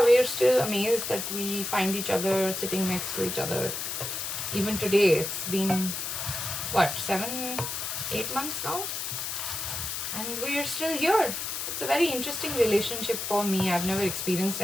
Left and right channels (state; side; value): noise; left; hiss, 4 dB below the sound